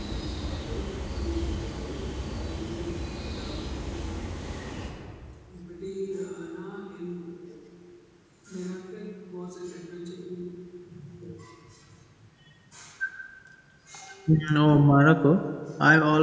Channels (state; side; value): identical; both; correlation 1.00